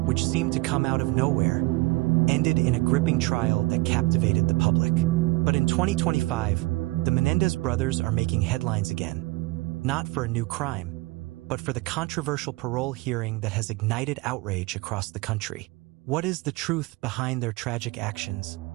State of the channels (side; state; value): left; quieter; 22.4 dB